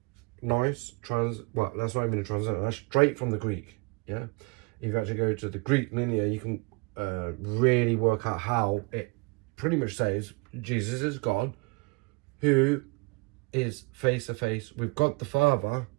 Nice. Well, that's not even a translation. That's straight from the Greek. Yeah. If you actually go to the Greek linear, you can really work out how it pretty much says Jesus is God, who is face to face with God the Father,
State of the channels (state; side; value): quieter; left; 28.7 dB